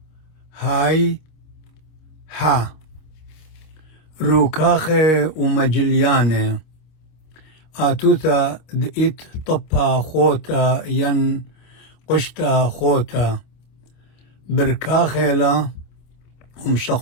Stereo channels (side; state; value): right; late; 25 ms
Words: هاي ها روكاخي ومجلياني آتوتا دئت طبا خوتا ين قشتا خوتا بركاخيلا